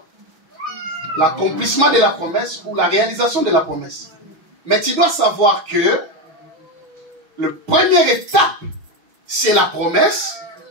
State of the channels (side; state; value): left; late; 6.3 ms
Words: L'accomplissement de la promesse ou la réalisation de la promesse. Mais tu dois savoir que la première étape, c'est la promesse,